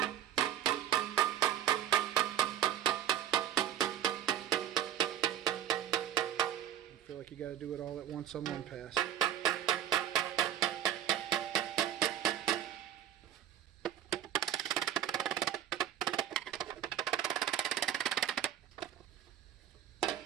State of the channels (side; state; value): left; quieter; 10.4 dB